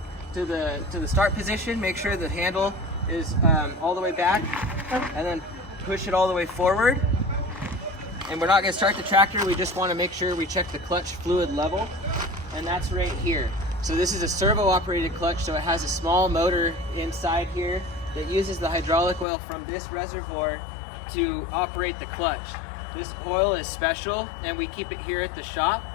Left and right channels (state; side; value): drops out; right; at 19.2 s